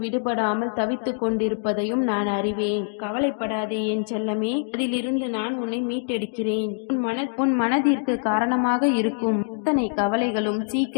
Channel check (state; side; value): silent; right; digital silence